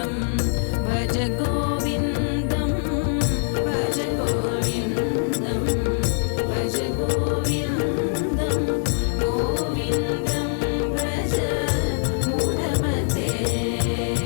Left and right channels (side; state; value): right; silent; digital silence